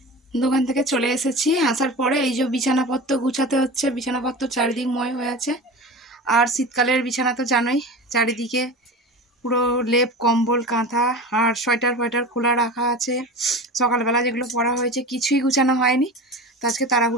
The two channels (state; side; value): normal; both; correlation 0.31